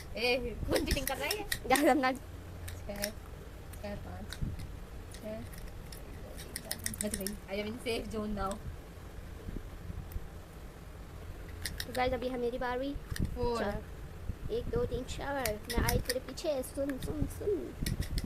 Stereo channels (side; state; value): both; identical; correlation 1.00